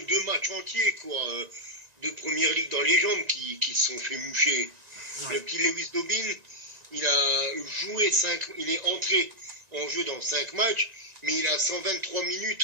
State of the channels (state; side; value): late; left; 1.9 ms